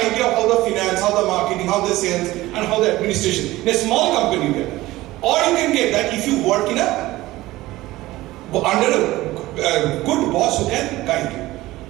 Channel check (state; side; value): quieter; left; 17.7 dB